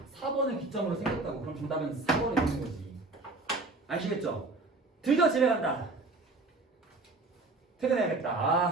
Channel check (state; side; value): quieter; left; 3.4 dB